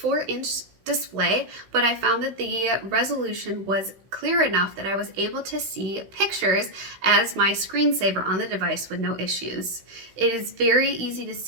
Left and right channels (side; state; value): left; late; 16 ms